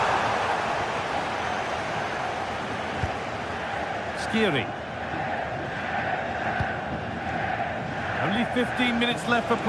Skiri. Only 15 minutes left for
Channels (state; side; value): identical; both; correlation 1.00